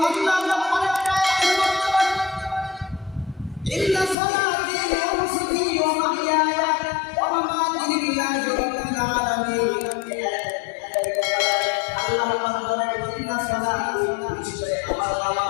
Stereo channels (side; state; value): right; drops out; at 4.2 s